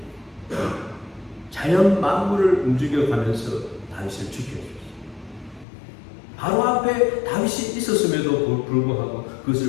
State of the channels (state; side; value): drops out; right; at 5.7 s